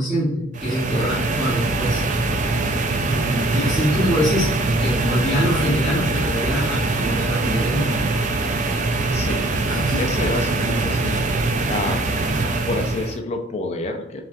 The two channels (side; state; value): both; normal; correlation 0.57